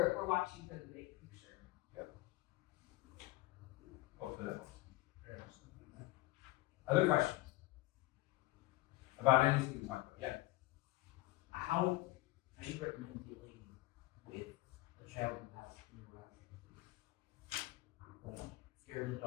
watching for the big picture. hopefully that helps. Other questions about anything we talked about? Yeah. How do you recommend dealing with a child who has neurotic, like scared of the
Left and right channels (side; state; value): right; quieter; 19.1 dB